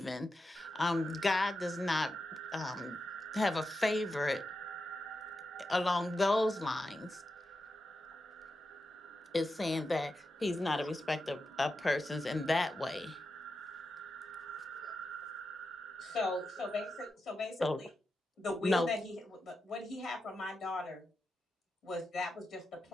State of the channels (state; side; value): normal; both; correlation 0.89